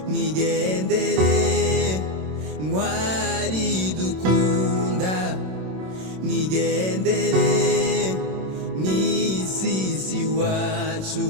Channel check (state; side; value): late; left; 27 ms